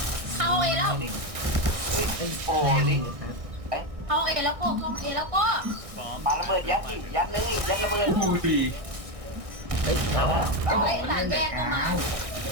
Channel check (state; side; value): late; left; 1.6 ms